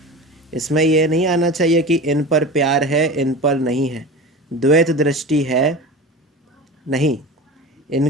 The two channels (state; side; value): normal; both; correlation 0.31